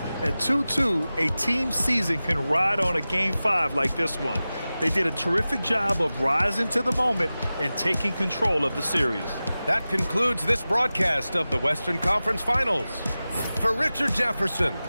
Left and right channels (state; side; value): inverted; both; correlation -0.96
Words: At 2-2, a team season can ride on a Game 5 like this one. They did a terrific job of rising to the moment and taking control of the series. That concludes this broadcast of the Western Conference Finals. For Richard Jefferson,